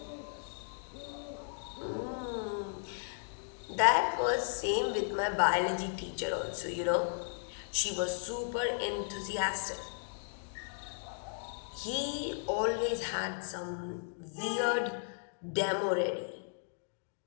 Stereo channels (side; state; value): right; silent; digital silence